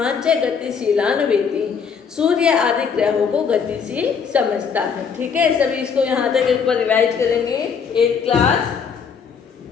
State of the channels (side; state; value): right; quieter; 6.4 dB